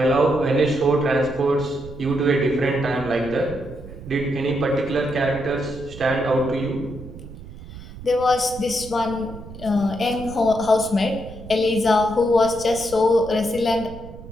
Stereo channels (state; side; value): noise; right; rumble, 15 dB below the sound